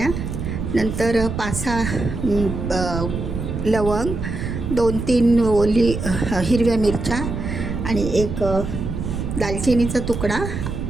नंतर 5-6 लवंग, 2-3 ओली हिरव्या मिरच्या आणि एक दालचिनीचा तुकडा,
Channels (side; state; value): right; noise; rumble, 5 dB below the sound